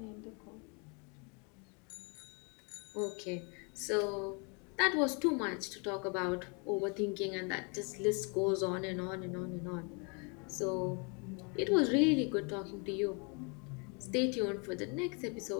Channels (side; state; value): right; quieter; 34.4 dB